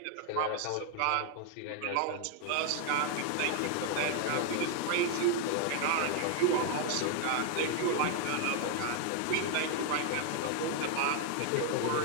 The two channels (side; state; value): both; different; correlation 0.00